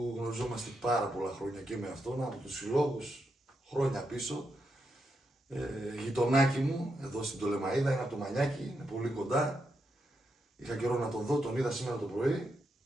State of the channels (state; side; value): normal; both; correlation 0.83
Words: γνωριζόμαστε πάρα πολλά χρόνια και με αυτόν, από τους συλλόγους χρόνια πίσω. Γειτονάκι μου, εδώ στην Τολεμαΐδα, είναι από το Μανιάκι, είναι πολύ κοντά. Είχα καιρό να τον δω, τον είδα σήμερα το πρωί.